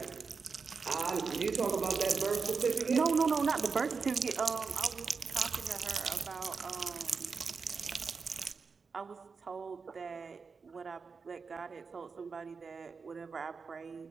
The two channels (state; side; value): quieter; left; 5.1 dB